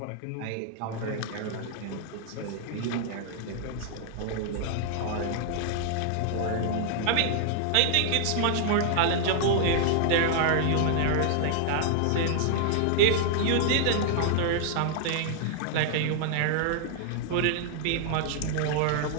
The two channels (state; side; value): different; both; correlation -0.01